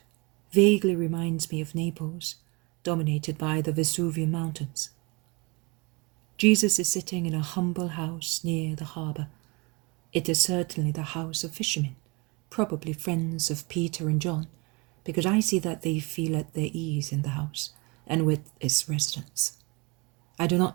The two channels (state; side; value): quieter; left; 28.0 dB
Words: vaguely reminds me of Naples, dominated by the Vesuvian mountains. Jesus is sitting in a humble house near the harbour. It is certainly the house of fishermen, probably friends of Peter and John, because I see that they feel at their ease in the house and with its residents. I do